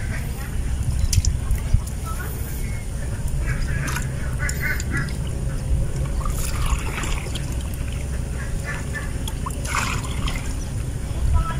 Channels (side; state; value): both; identical; correlation 1.00